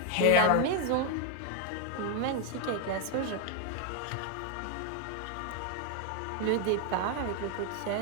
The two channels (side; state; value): both; different; correlation 0.00